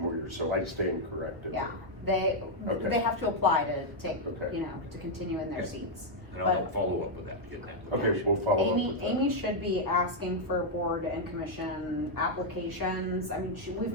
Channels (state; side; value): late; left; 1.2 ms